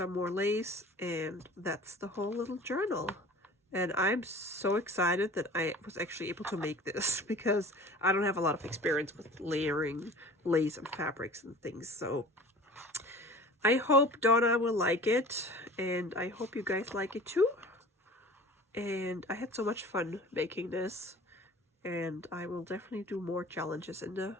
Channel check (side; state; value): both; normal; correlation 0.42